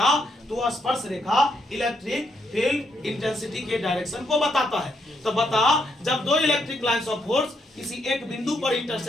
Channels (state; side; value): normal; both; correlation 0.77